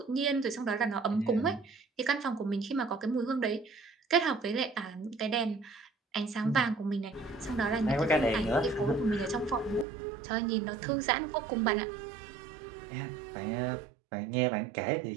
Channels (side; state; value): left; drops out; at 9.9 s